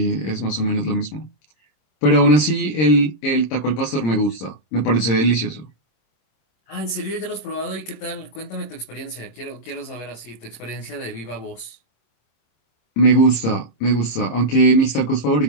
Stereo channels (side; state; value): right; late; 26 ms